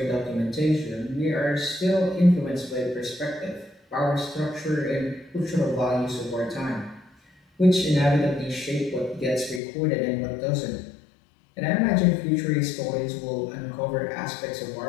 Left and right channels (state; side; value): drops out; right; at 9.6 s